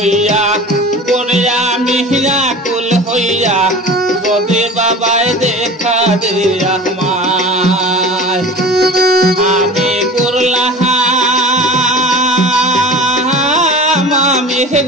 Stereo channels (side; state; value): both; normal; correlation 0.37